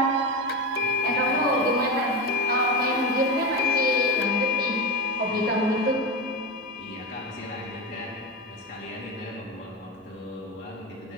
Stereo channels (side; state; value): both; normal; correlation 0.19